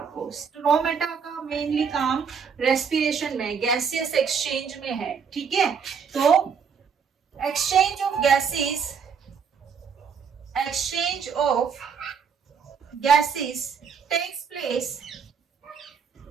स्टोमेटा का मेनली काम रेस्पिरेशन में, गैसियस एक्सचेंज में है। ठीक है, तो exchange of gases, exchange of gases takes place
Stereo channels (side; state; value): left; quieter; 6.4 dB